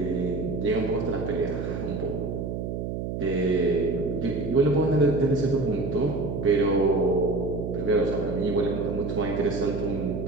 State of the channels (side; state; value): right; noise; hum, 4 dB below the sound